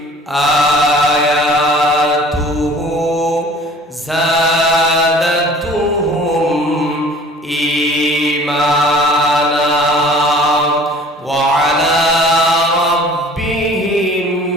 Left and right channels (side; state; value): both; normal; correlation 0.48